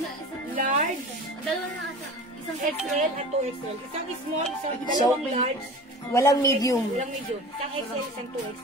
large, dalawa na ata. Isang XL at 2XL. Isang small, isang So, dalawang large, walang medium. walang medium. Isang XL, isang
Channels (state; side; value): normal; both; correlation 0.37